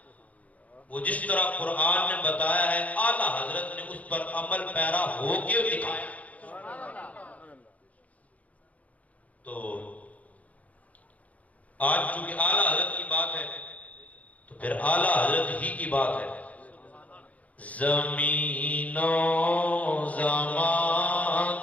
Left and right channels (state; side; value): late; right; 0.069 ms